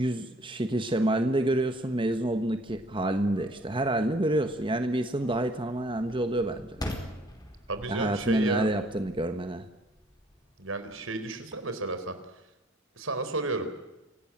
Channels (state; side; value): normal; both; correlation 0.58